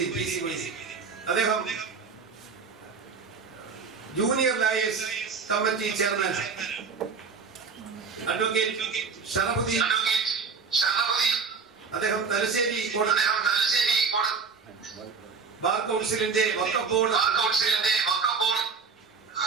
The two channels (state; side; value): quieter; left; 5.3 dB